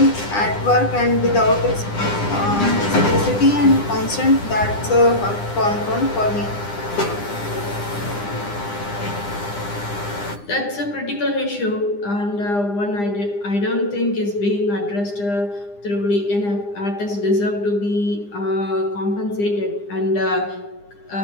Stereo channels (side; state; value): right; late; 9.9 ms